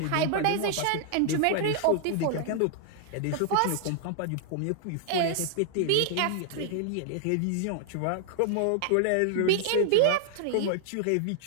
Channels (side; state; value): both; different; correlation 0.00